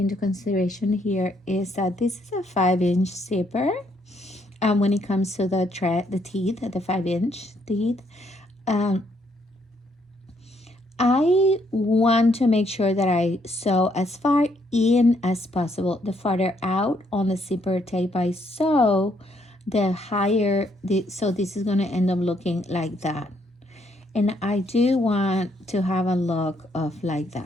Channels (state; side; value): normal; both; correlation 0.71